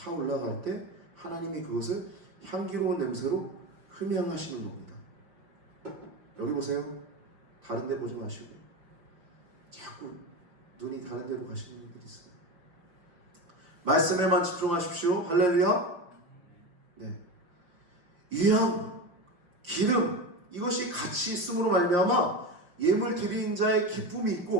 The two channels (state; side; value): late; left; 5.7 ms